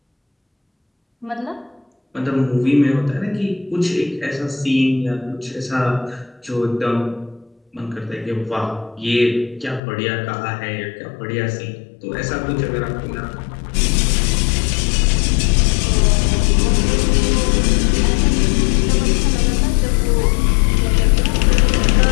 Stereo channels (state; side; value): drops out; right; at 9.8 s